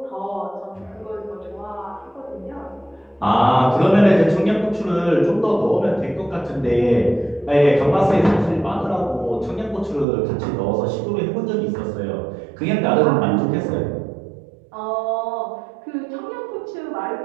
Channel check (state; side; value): drops out; left; at 10.1 s